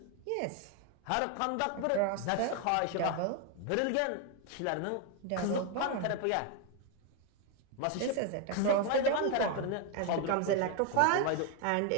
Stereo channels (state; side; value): different; both; correlation 0.01